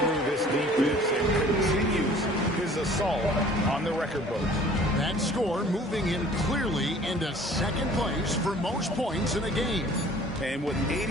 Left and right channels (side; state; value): both; normal; correlation 0.51